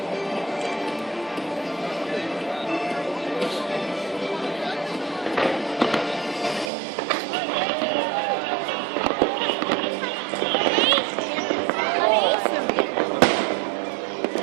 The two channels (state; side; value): drops out; left; at 6.7 s